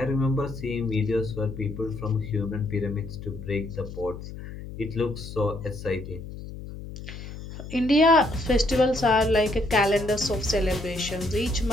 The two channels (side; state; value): left; noise; hum, 11 dB below the sound